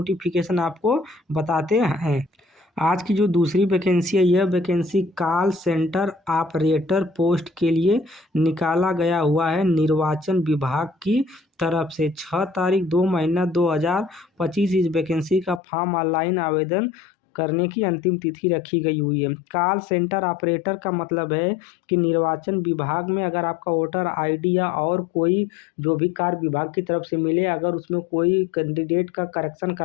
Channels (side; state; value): right; drops out; at 15.6 s